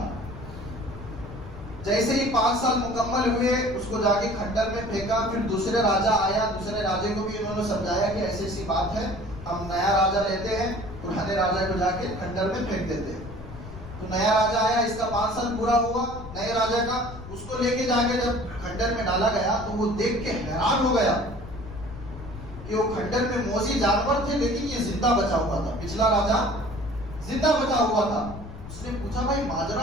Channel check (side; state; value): left; noise; rumble, 14 dB below the sound